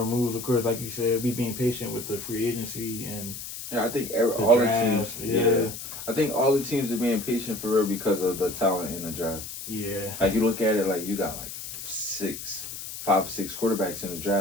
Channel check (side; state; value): left; noise; hiss, 9 dB below the sound